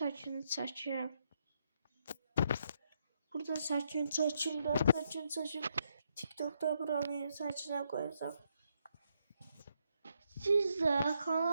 çəkirəm. Burada saçını çəkim. TikTok'da buranın saçına koyacağım. Siz de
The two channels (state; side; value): inverted; both; correlation -0.77